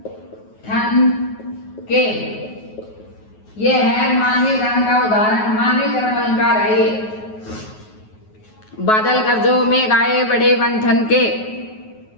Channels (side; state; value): right; late; 9.4 ms